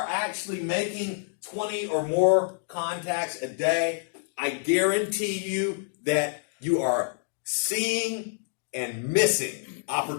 actually making 20 or more contacts a day, I guarantee you that you are seeing and missing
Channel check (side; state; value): right; silent; digital silence